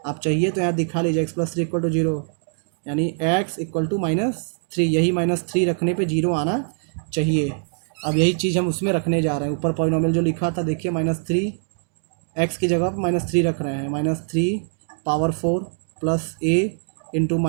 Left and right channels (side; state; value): left; silent; digital silence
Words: आप चाहिए तो यहाँ दिखा लीजिए, x plus three equal to zero, यानी x equal to minus three, यही माइनस थ्री रखने पे जीरो आना चाहिए। अब यही चीज़ हम उसमें रखने जा रहे हैं, ऊपर पॉलिनोमियल जो लिखा था देखिए, माइनस थ्री, एक्स की जगह पर माइनस थ्री रख रहे हैं, minus three power four plus a into